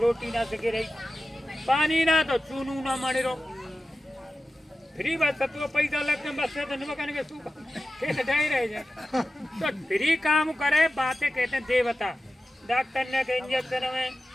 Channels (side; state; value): both; normal; correlation 0.93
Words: रोटी ना सके रही पानी ना तो चूनू ना मरे रो फ्री बस तो पैसा लगते बस से तो निमकने के सूखा खेत ढाई रह जाए तो फ्री काम करे बातें कहते हैं देवता डॉक्टर ने के इंजेक्शन में